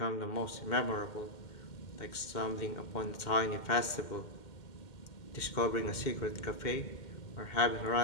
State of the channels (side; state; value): right; late; 2.1 ms